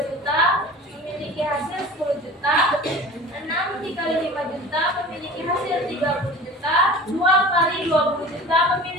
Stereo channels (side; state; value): both; normal; correlation 0.39